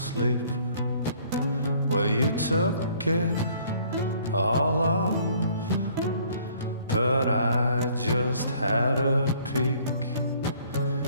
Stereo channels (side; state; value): both; inverted; correlation -0.59